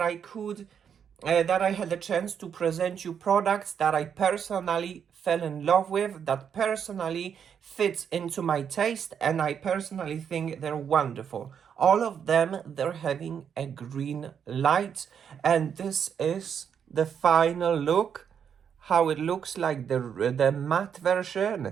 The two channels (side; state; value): left; quieter; 7.8 dB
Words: I had a chance to present you products that I personally fell in love with, that personally fits into my taste, and I personally think they're wonderful. All of them, they're having a green light, and this is the final look. How it looks like the matte